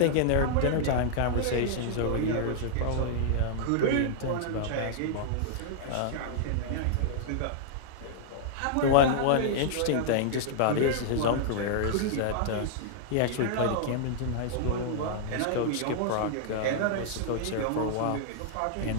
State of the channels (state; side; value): different; both; correlation -0.01